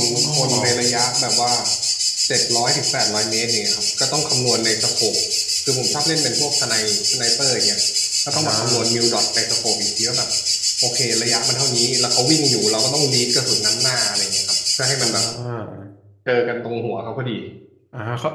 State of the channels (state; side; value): identical; both; correlation 1.00